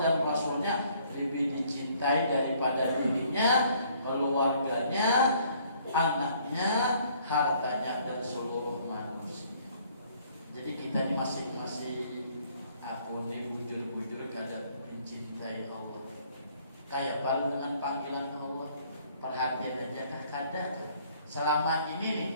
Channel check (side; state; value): both; inverted; correlation -0.62